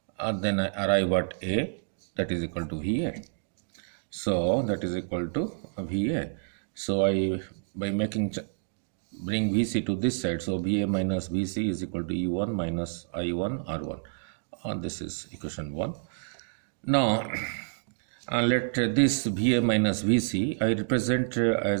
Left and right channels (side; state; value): left; silent; digital silence